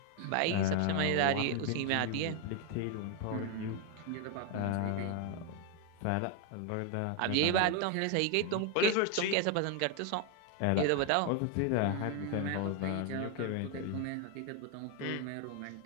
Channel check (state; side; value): different; both; correlation 0.01